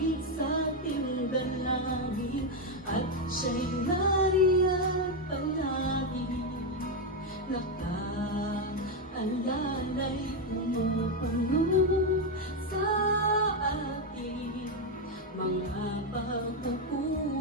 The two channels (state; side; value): normal; both; correlation 0.06